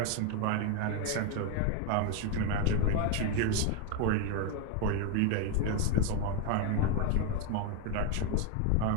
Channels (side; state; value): both; different; correlation 0.01